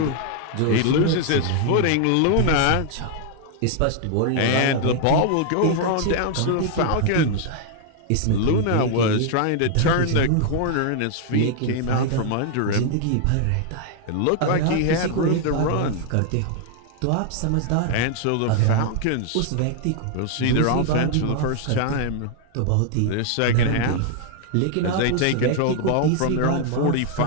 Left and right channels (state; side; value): different; both; correlation 0.00